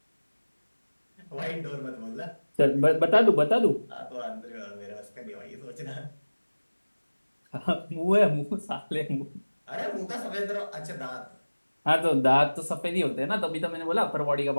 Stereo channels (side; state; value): both; inverted; correlation -1.00